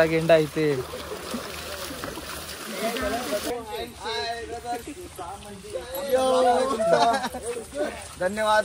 गेंडा इथे. धन्यवाद.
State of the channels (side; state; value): both; identical; correlation 1.00